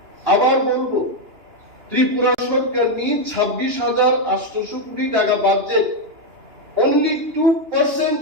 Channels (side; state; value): left; late; 2.9 ms